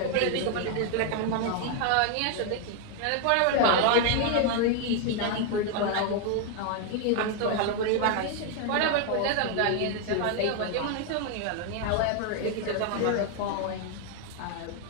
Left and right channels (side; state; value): both; different; correlation 0.00